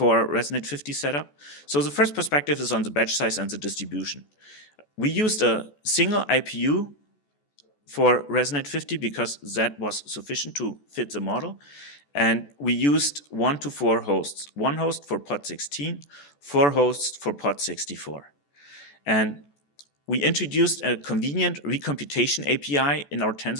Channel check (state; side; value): late; right; 14 ms